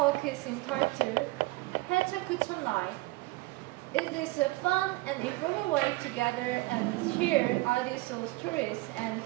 is entitled Pecha Kucha Night. It is a fun and informal way to gather and share audio soul stories, and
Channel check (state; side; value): quieter; left; 21.9 dB